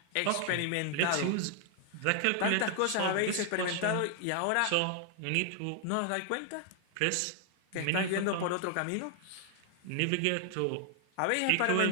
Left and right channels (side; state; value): both; different; correlation 0.00